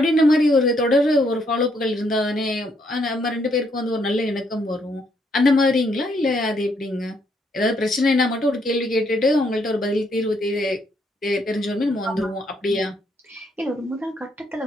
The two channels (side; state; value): both; normal; correlation 0.73